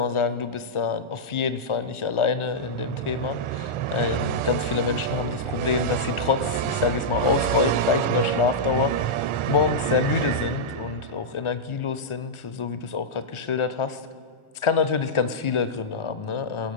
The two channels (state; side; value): late; right; 1.4 ms